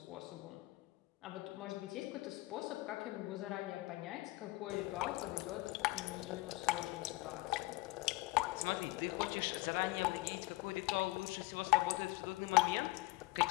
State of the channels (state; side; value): quieter; right; 21.0 dB